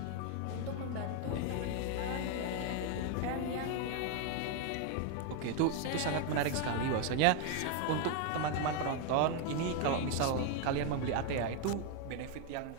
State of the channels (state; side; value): different; both; correlation 0.01